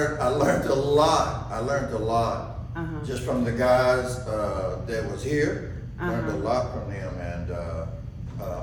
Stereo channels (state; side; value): identical; both; correlation 1.00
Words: learned a lot. I learned a lot just from the guys that was here. Learned a lot from them, and